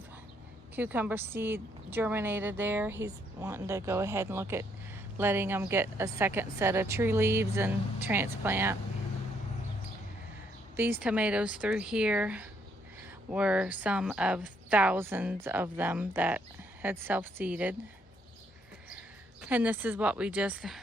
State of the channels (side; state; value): both; normal; correlation 0.71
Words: cucumber seed germinated there. He's wanting to go ahead and look at letting them get a second set of true leaves and transplant. These tomatoes through here were some of thousands of them that had self-seeded. And this is what we just